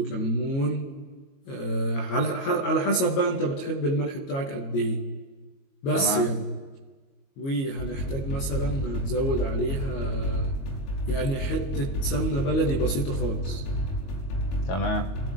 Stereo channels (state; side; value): late; right; 22 ms